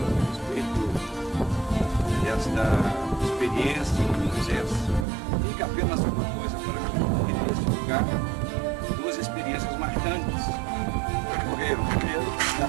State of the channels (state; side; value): drops out; left; at 5.1 s